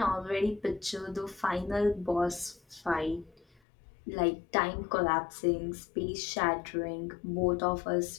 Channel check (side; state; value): right; drops out; at 3.6 s